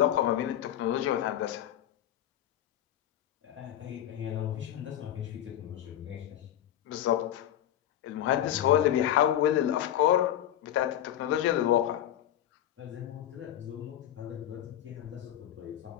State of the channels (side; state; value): right; quieter; 11.7 dB